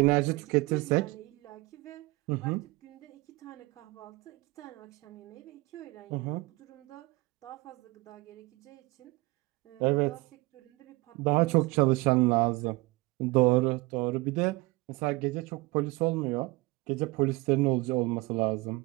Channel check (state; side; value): quieter; left; 23.1 dB